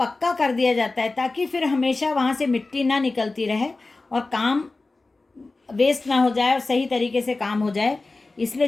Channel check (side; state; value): right; quieter; 3.4 dB